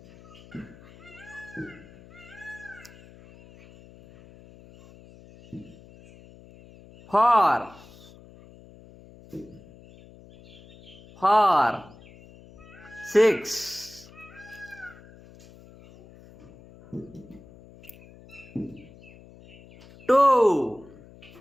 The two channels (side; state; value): left; noise; hum, 22 dB below the sound